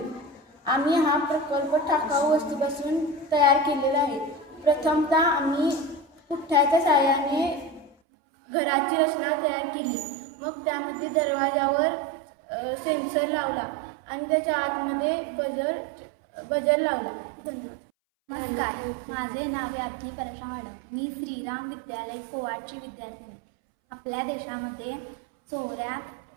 आम्ही हा प्रकल्प टाकाऊ वस्तूपासून तयार केलेला आहे. प्रथमतः आम्ही पुठ्ठ्याच्या साहाय्याने घराची रचना तयार केली. मग त्यामध्ये दरवाजावर सेन्सर लावला आणि त्याच्या आतमध्ये बजर लावला. धन्यवाद. नमस्कार, माझे नाव याज्ञी परेशा मॅडम. मी श्रीराम विद्यालय कोवाडची विद्यार्थिनी. आपल्या देशामध्ये चोऱ्या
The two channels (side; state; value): left; drops out; at 8.0 s